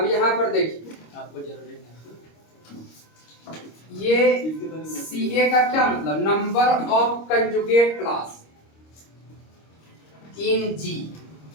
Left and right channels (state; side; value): late; right; 26 ms